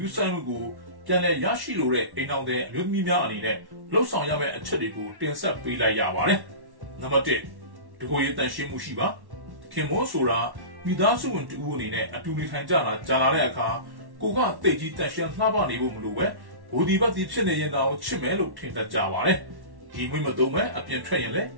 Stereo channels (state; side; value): late; left; 1.1 ms